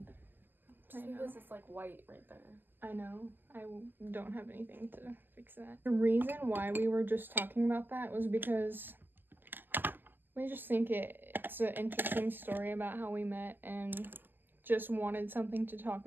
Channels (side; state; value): left; late; 0.091 ms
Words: This is, like, white right there. I know. I don't have anything to fix that. The reason why we were just talking about that was because... we just think it's an interesting story about how we met and just wanted something to talk